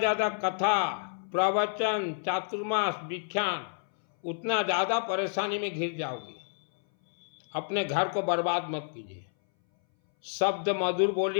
कथा प्रवचन चातुर्मास विख्यान, उतना ज्यादा परेशानी में घिर जाओगी। अपने घर को बर्बाद मत कीजिए। शब्द मधुर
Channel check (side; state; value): right; silent; 58 dB below the other